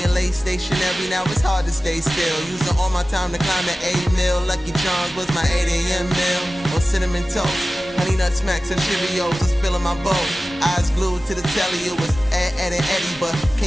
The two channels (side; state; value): both; normal; correlation 0.95